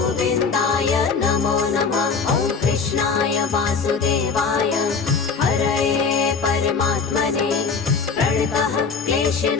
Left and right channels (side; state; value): right; quieter; 5.2 dB